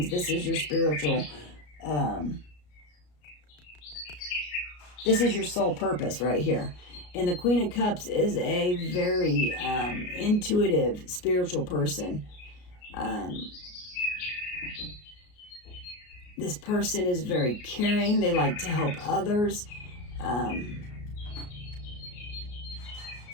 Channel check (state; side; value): late; right; 33 ms